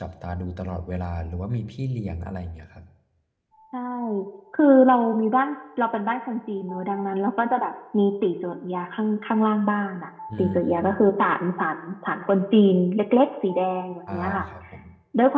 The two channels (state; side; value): identical; both; correlation 1.00